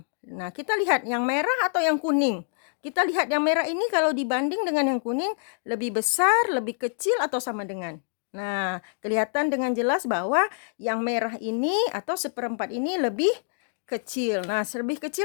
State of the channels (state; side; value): silent; right; digital silence